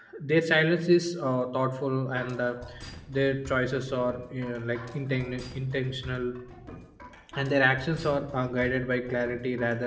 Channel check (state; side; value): identical; both; correlation 1.00